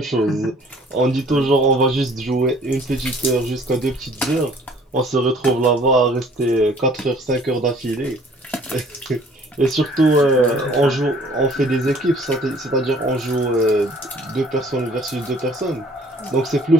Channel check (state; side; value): normal; both; correlation 0.55